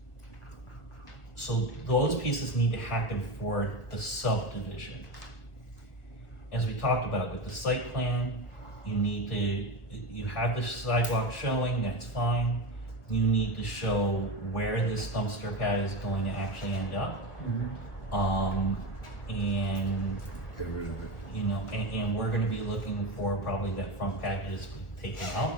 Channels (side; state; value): right; late; 1.2 ms